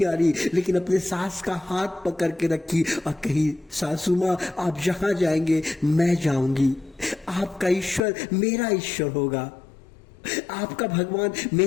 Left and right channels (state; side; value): drops out; right; at 8.0 s